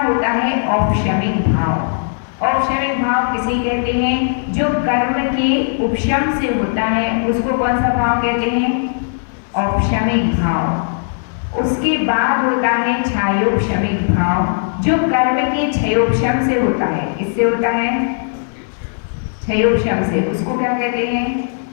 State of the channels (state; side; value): silent; right; digital silence